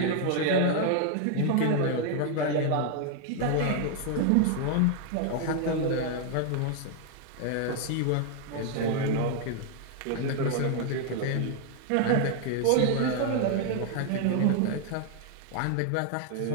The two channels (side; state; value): both; different; correlation 0.00